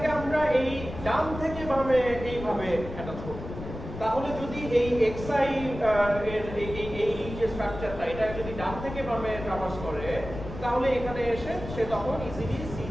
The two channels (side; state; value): left; noise; rumble, 10 dB below the sound